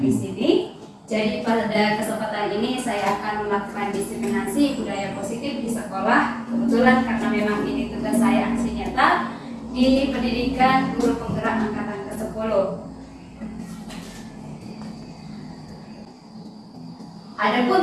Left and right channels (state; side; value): identical; both; correlation 1.00